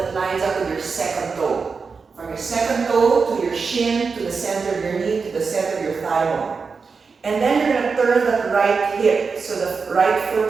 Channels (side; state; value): left; quieter; 5.0 dB